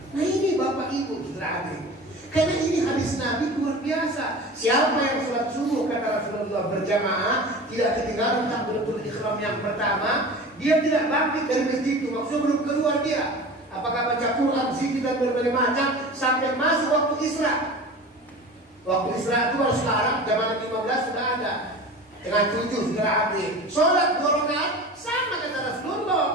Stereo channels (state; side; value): normal; both; correlation 0.35